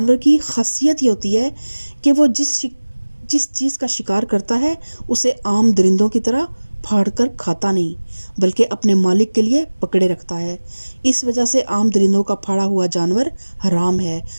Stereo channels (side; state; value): both; inverted; correlation -1.00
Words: کی خاصیت یہ ہوتی ہے کہ وہ جس چیز کا شکار کرتا ہے اسے عام درندوں کی طرح پھاڑ کر کھاتا نہیں بلکہ اپنے مالک کے لیے پکڑے رکھتا ہے۔ اس وجہ سے عام درندوں کا پھاڑا ہوا جانور حرام ہے